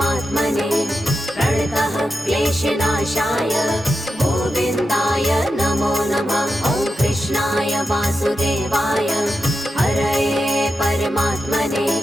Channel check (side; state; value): both; normal; correlation 0.89